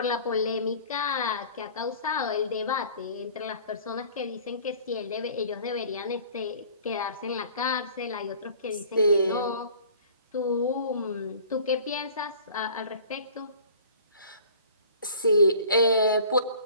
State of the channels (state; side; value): inverted; both; correlation -0.48